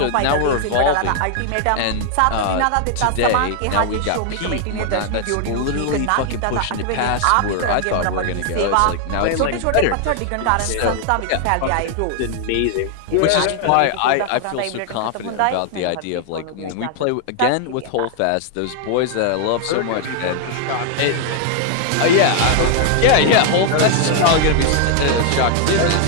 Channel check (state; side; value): different; both; correlation 0.00